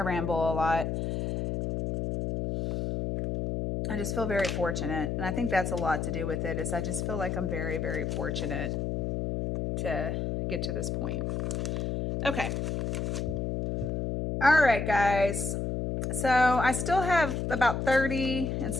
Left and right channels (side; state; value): left; noise; hum, 1 dB below the sound